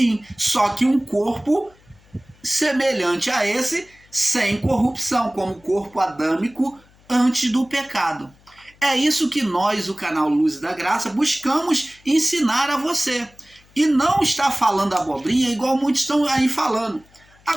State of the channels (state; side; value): noise; left; hum, 29 dB below the sound